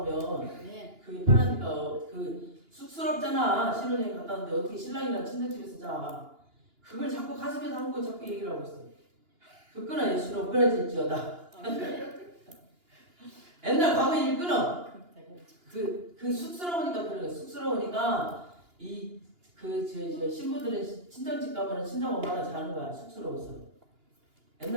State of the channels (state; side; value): late; left; 2.9 ms